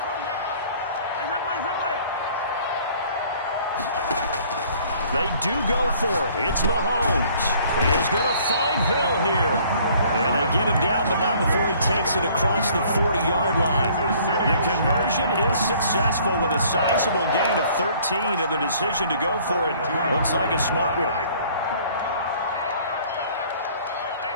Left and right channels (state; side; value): inverted; both; correlation -0.56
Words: They do go for it. It's Mahomes. He is going to find Hill here. And they get him down, but not before he takes it across the 40-yard line. The conversion is successful with a sizable gain of 13, and the decision to go for it looks like a smart one.